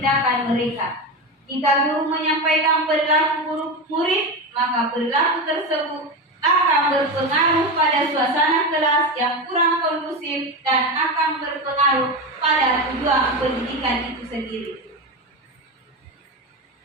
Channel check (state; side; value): normal; both; correlation 0.19